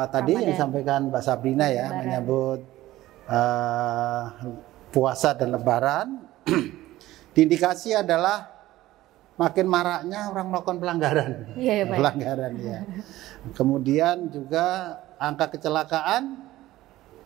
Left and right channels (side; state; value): left; quieter; 16.0 dB